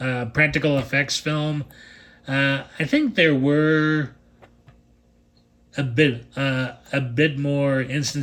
practical effects film. I think there were a bit more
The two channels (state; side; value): identical; both; correlation 1.00